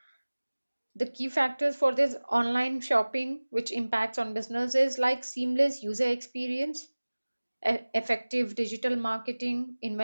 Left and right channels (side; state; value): both; inverted; correlation -1.00